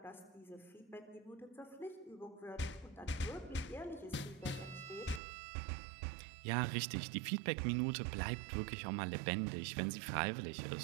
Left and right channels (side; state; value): left; drops out; at 5.2 s